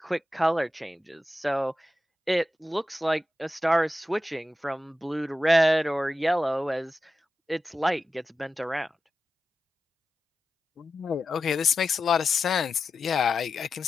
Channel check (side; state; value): both; normal; correlation 0.91